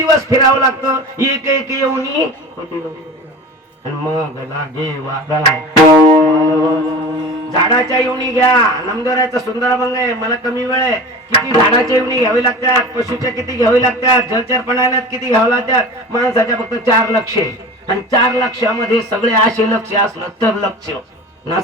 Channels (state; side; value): normal; both; correlation 0.35